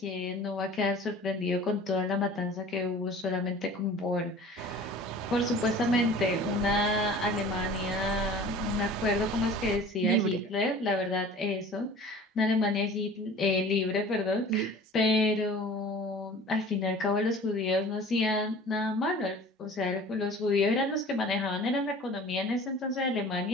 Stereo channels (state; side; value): normal; both; correlation 0.43